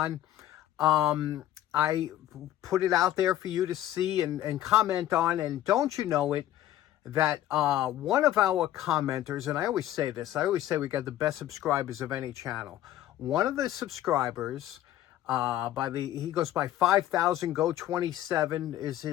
I put it out there for you to see and comment on, and don't you know it, that one of our commenters, and I always say this, we got the best subscribers of any channel. One of the subscribers, he goes by 5000 Go 27 is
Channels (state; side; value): quieter; right; 13.0 dB